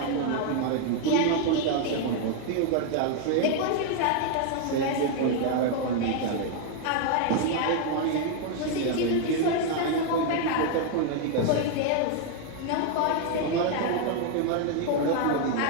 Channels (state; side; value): different; both; correlation 0.00